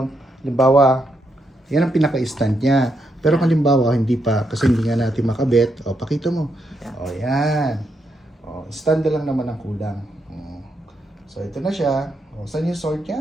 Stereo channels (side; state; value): both; normal; correlation 0.80